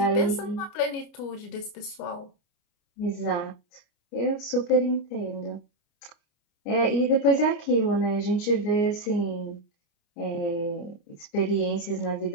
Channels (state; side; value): late; right; 29 ms